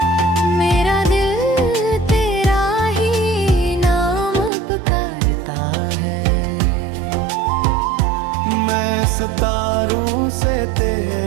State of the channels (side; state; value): left; drops out; at 4.5 s